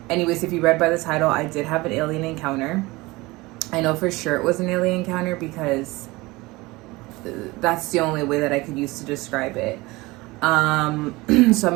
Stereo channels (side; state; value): left; quieter; 21.8 dB